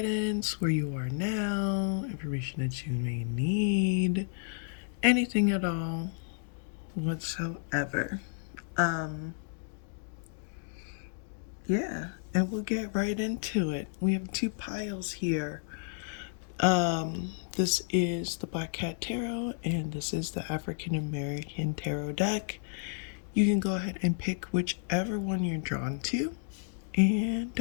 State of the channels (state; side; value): silent; right; 57 dB below the other